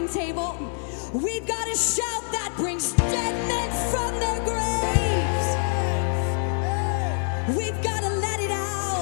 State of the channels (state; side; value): silent; right; 58 dB below the other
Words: table, we've got a shout that brings dead men from their graves. We've got to let it